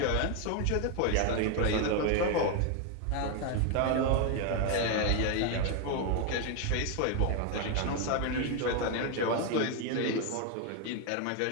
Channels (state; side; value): different; both; correlation 0.01